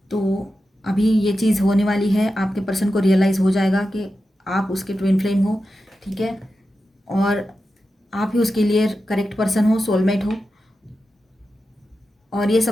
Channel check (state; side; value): normal; both; correlation 0.91